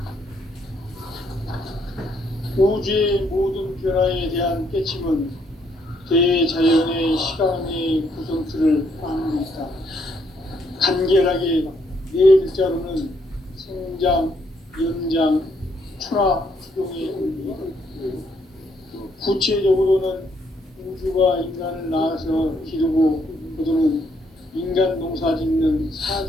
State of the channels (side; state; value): both; normal; correlation 0.71